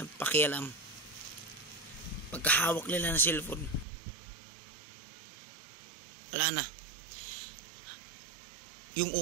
pakialam. Pagkahawak nila ng cellphone, wala na. Yung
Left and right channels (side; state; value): left; drops out; at 3.9 s